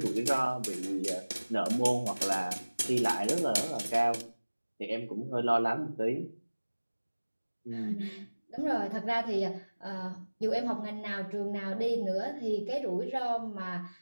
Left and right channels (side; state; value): both; inverted; correlation -1.00